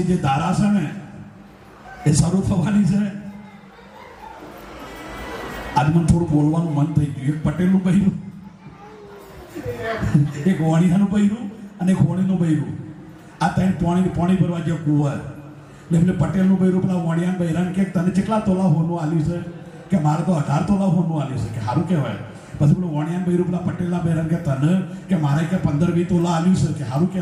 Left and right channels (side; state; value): both; identical; correlation 1.00